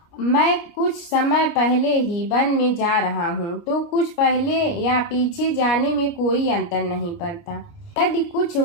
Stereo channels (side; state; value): right; late; 29 ms